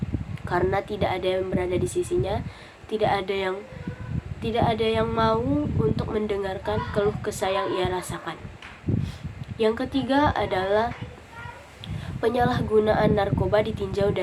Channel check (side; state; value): both; identical; correlation 1.00